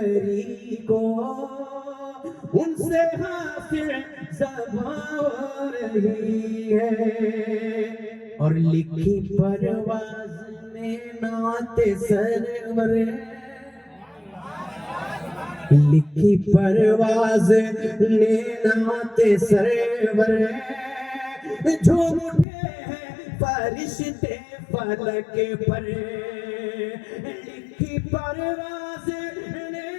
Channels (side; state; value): right; drops out; at 22.5 s